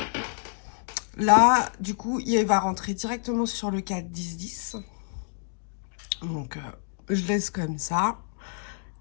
Là, du coup, il va rentrer directement sur le cadre 10-10. Donc, je laisse comme ça.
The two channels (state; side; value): silent; right; digital silence